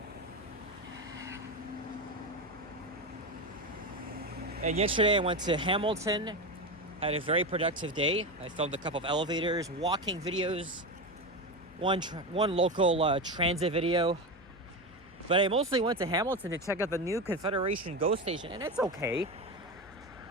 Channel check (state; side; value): noise; left; hum, 24 dB below the sound